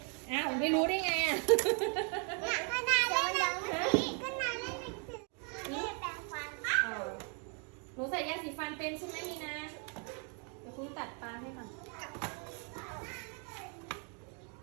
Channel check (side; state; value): left; quieter; 38.7 dB